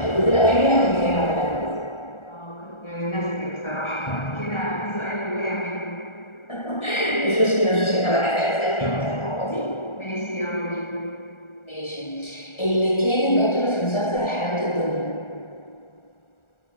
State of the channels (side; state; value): right; late; 1.4 ms